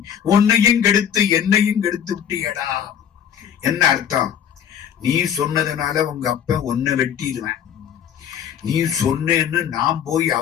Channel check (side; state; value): right; quieter; 8.9 dB